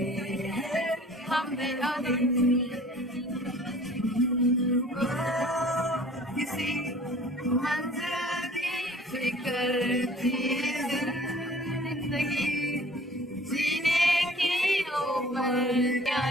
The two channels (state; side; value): normal; both; correlation 0.50